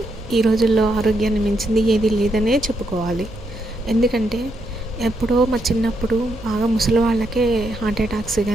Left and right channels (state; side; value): noise; right; rumble, 15 dB below the sound